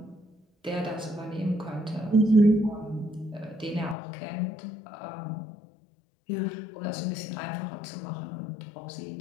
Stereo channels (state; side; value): drops out; right; at 4.0 s